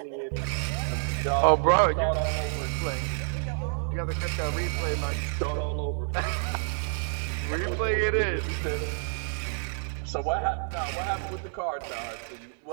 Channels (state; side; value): silent; left; 59 dB below the other